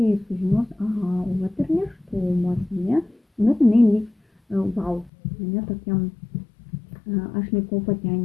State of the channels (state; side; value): drops out; right; at 5.1 s